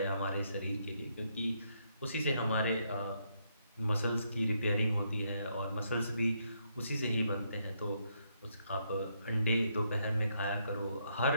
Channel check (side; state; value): both; inverted; correlation -0.75